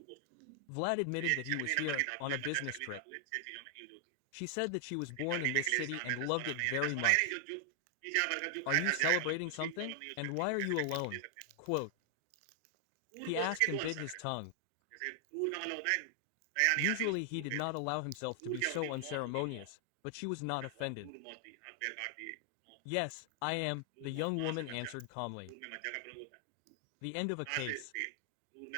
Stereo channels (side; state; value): both; different; correlation 0.00